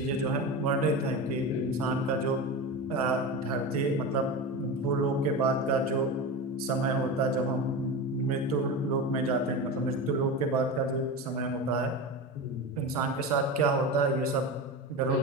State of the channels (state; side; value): normal; both; correlation 0.24